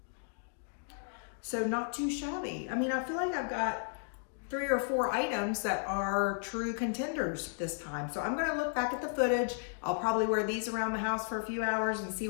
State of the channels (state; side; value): silent; right; digital silence